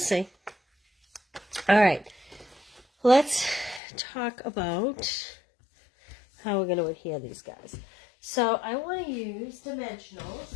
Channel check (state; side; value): drops out; right; at 3.8 s